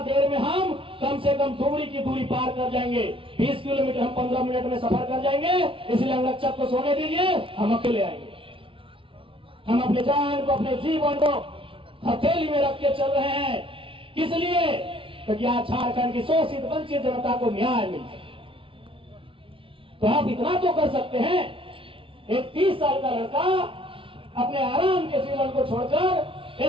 देर में हम कम से कम दुबड़ी की दूरी पार कर जाएंगे। 20 किलोमीटर हम 15 मिनट में सफर कर जाएंगे, इसलिए अंगरक्षक को सोने दीजिए, हम अकेले आएंगे। हम अपने जान को, अपने जीवन को हथेली में रख के चल रहे हैं। किस लिए? क्योंकि आज झारखंड की शोषित वंचित जनता को न्याय मिल जाए। तो आप इतना तो कर सकते हैं, एक 30 साल का लड़का अपने आराम के जीवन को छोड़कर,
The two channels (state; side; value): late; left; 0.25 ms